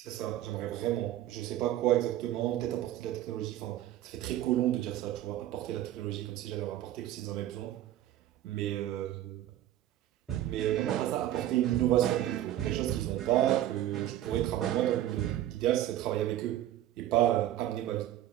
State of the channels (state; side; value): quieter; left; 13.1 dB